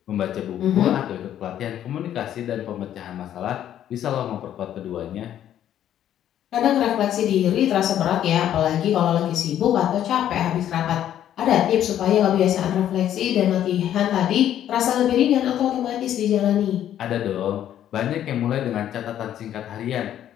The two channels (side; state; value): right; quieter; 11.0 dB